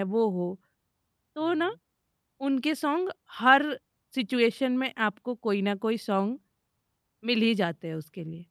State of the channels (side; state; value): both; identical; correlation 1.00